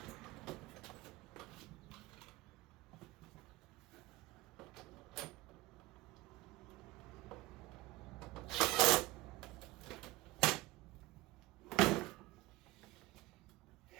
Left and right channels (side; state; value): left; quieter; 19.8 dB